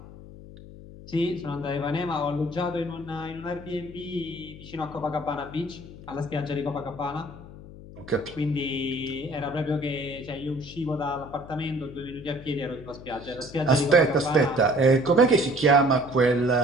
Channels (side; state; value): left; noise; hum, 16 dB below the sound